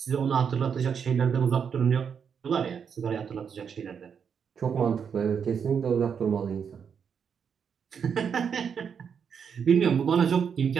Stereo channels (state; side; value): quieter; left; 7.0 dB